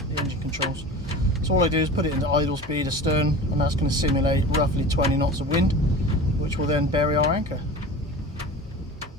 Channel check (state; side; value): normal; both; correlation 0.35